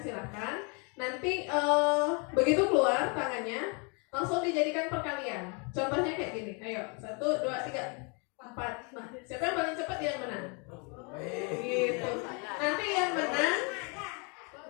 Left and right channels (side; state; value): right; quieter; 34.1 dB